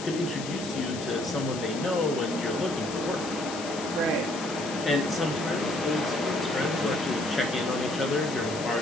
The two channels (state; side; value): noise; left; hiss, 10 dB below the sound